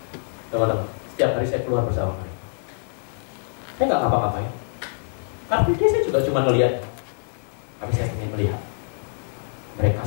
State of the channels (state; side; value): silent; right; digital silence